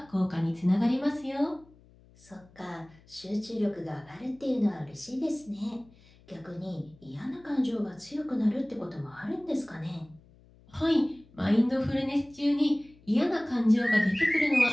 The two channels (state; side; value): noise; left; hum, 27 dB below the sound